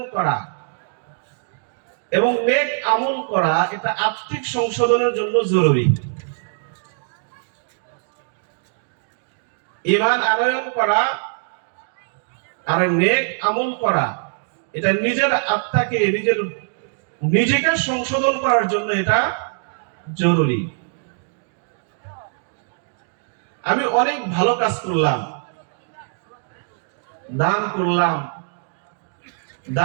করা এবং নেক আমল করা, এটা আত্মিক সংশোধনের জন্য জরুরি। ঈমান আনয়ন করা আর নেক আমল করা, এটা নিজের আত্মাকে নিজেকে সংশোধন করার জন্য এটা জরুরি। আমি অনেক ভালো কাজ করলাম, দান করলাম,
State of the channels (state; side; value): silent; left; digital silence